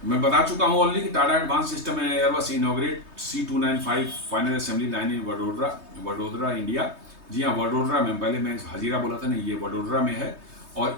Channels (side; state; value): left; late; 3.2 ms